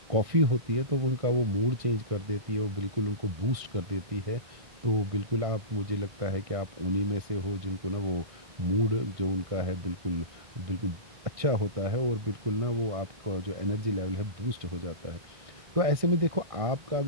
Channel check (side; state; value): left; late; 1.6 ms